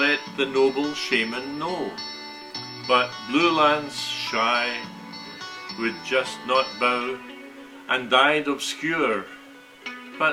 the noble shaman know. But Blue Lance, shy, would just not bow, and died obscure,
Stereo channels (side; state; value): both; identical; correlation 1.00